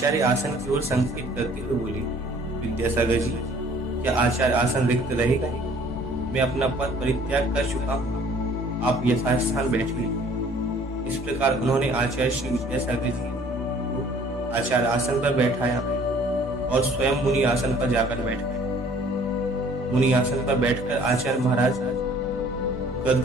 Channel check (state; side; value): normal; both; correlation 0.55